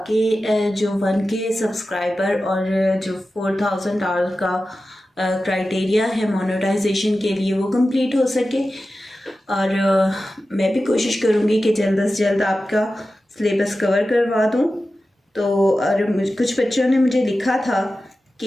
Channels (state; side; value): normal; both; correlation 0.94